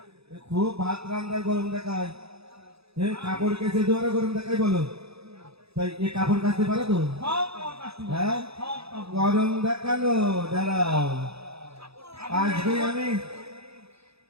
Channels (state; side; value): late; left; 0.78 ms